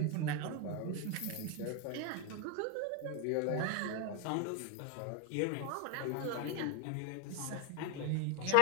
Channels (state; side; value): different; both; correlation 0.01